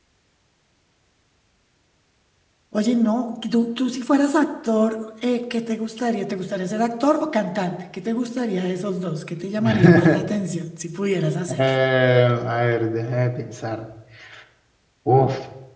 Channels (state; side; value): identical; both; correlation 1.00